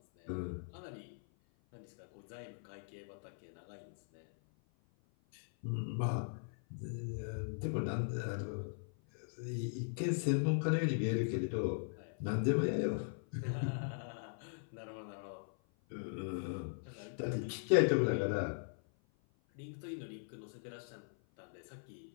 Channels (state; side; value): silent; right; 51 dB below the other